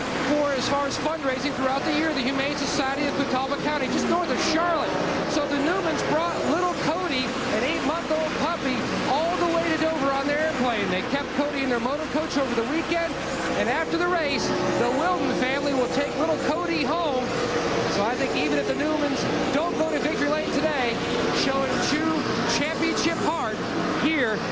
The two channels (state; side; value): identical; both; correlation 1.00